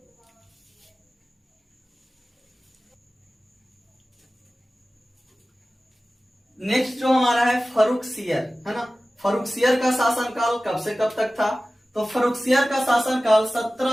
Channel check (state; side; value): normal; both; correlation 0.96